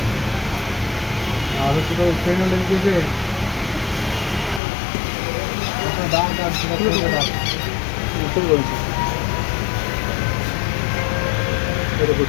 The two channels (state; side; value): drops out; right; at 4.6 s